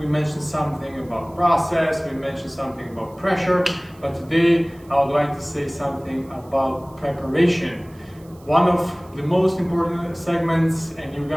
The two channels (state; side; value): noise; right; hiss, 28 dB below the sound